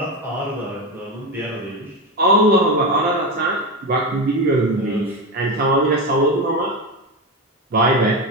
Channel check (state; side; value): normal; both; correlation 0.17